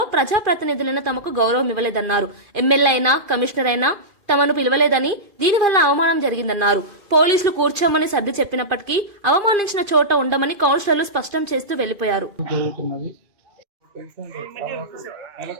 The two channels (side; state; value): left; late; 2.5 ms